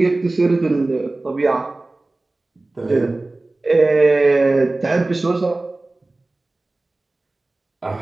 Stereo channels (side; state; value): left; quieter; 3.0 dB